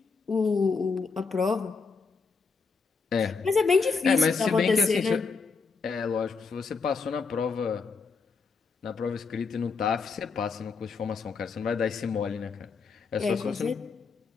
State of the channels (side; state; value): right; quieter; 4.9 dB